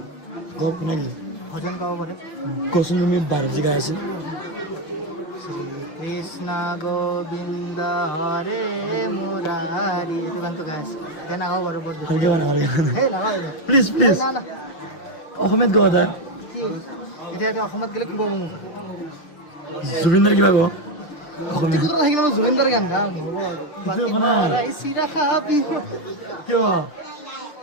গপ কোনে গ'লে ভজন গাব পাৰে কচোন তুমি বাহিৰত যে গাই আছিল কৃষ্ণ গোবিন্দ হৰে মুৰাৰী এইটো গানটো গাই আছে এতিয়া নাগাওঁ বাৰু বৰ দুখ ভালকৈ মানে ভালকৈ সেই নাগাওঁ প্লিজ প্লিজ না না অসমীয়াত গোৱা এটা কি এতিয়া অসমত গ'লে কি পাব মোক জুবিনদাৰ কিবা কওঁ অসমীয়া টিকুতৰ সেইখিনি মই জুবিনদাৰ গান গাম হ'ব সেইটো একো নাই। চিৰা খাবি কিয়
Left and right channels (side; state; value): right; late; 6.4 ms